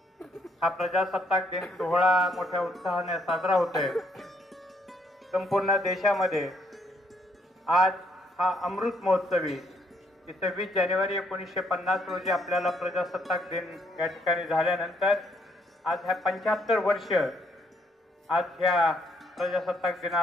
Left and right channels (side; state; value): both; normal; correlation 0.70